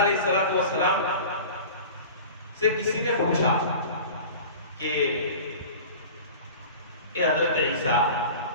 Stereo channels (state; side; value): inverted; both; correlation -0.38